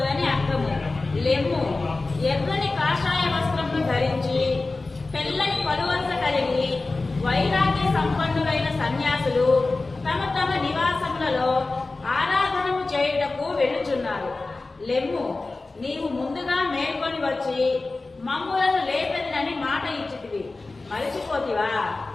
అర్థము. లెమ్ము, ఎర్రని కాషాయ వస్త్రమును ధరించి తెల్లని పలువరుస కలిగి వైరాగ్య సంపన్నులైన సన్యాసులు తమ తమ నివాసములలో ఆరాధనము చేయుటకు వెళ్ళుచున్నారు. లెమ్ము, నీవు ముందుగా మేల్కొని వచ్చి మమ్ములను లేపెదనని మాట ఇచ్చితివి, మరచిపోతివా?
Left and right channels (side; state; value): right; quieter; 3.4 dB